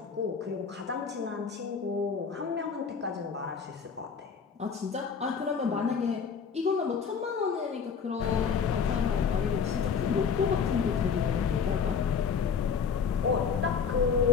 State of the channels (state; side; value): quieter; right; 6.2 dB